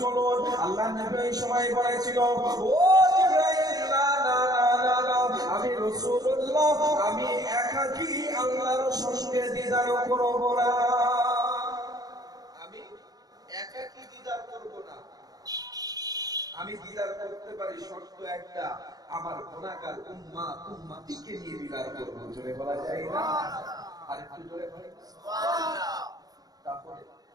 আল্লাহ নবী এই সময় বলেছিল, ও জিবরাইল, না না না না, আমি রাসূলুল্লাহ, আমি একাকী আল্লাহর সঙ্গে দিদার করব না, আমি একাকী দিদার করব না। আমি দিদার করতে পারি, শর্ত একটা, আমার গুনাহগার উম্মতিকে নিয়ে দিদার করব। জোরে বলা যায় না? আর একটু জোরে বলি সুবহানাল্লাহ। তাহলে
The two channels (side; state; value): left; late; 0.18 ms